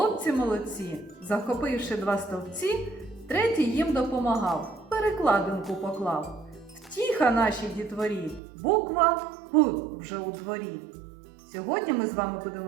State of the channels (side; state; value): left; drops out; at 8.4 s